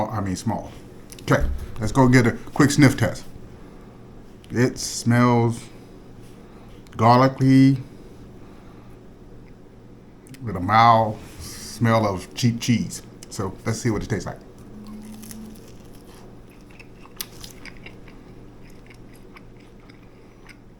I mean small. Okay, let's go get a quick sniff test. It smells garlicky with a mild smell of cheap cheese. So let's see what it tastes like.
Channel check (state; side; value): identical; both; correlation 1.00